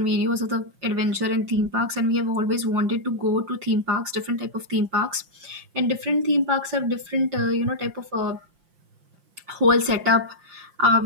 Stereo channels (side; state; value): left; late; 5.6 ms